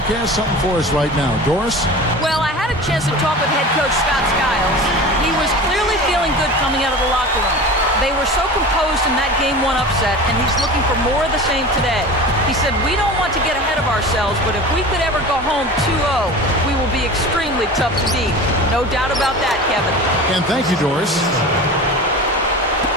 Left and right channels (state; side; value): normal; both; correlation 0.34